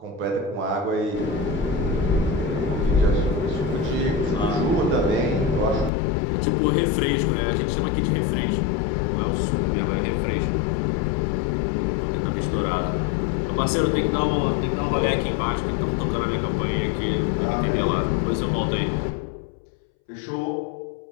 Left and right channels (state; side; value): drops out; right; at 5.9 s